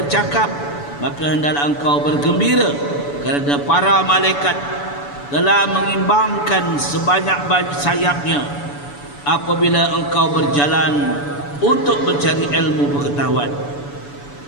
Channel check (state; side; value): late; right; 7.0 ms